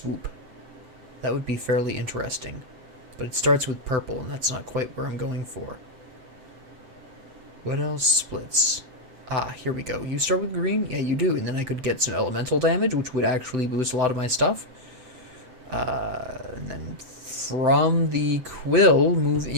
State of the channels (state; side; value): late; left; 7.7 ms